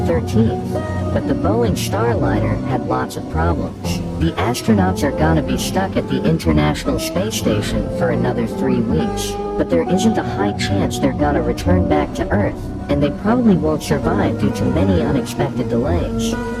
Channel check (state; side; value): identical; both; correlation 1.00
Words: 13th, but the Boeing Starliner had lots of problems. The astronauts are gonna be stuck at the International Space Station for another 3 weeks, but there isn't a high chance they're gonna return back to Earth, and they probably won't survive due to many unexpected delays.